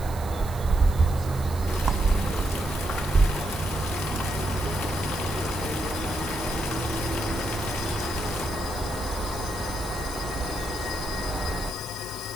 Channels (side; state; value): right; noise; hiss, 16 dB below the sound